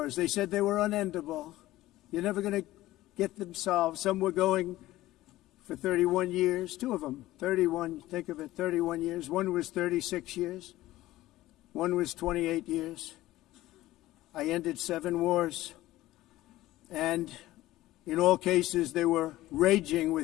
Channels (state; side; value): quieter; right; 16.4 dB